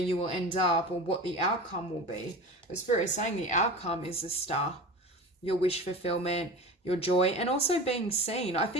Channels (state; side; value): normal; both; correlation 0.32